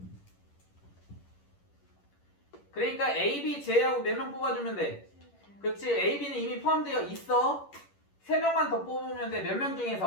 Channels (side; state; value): right; late; 11 ms